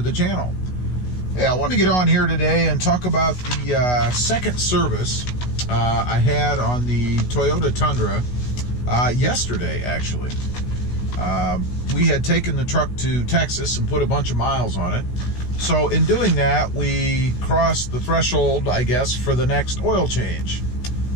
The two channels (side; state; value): right; late; 16 ms